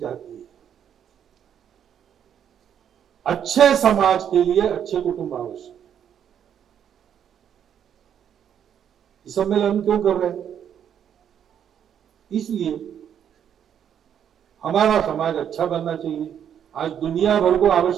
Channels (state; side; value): quieter; left; 9.0 dB